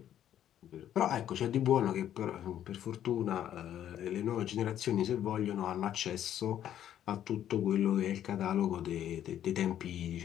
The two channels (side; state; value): right; quieter; 10.9 dB